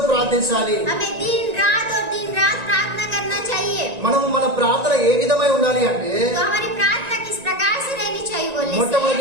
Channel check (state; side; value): late; left; 1.9 ms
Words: ప్రార్థించాలి. हमें दिन रात प्रार्थना करना चाहिए। మనము మన ప్రార్థన ఏ విధమై ఉండాలి అంటే तो हमारी प्रार्थना किस प्रकार से रहनी चाहिए बोलने से